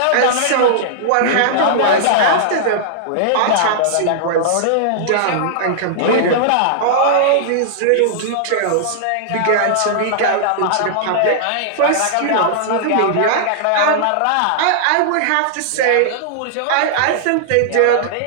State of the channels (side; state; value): both; different; correlation -0.01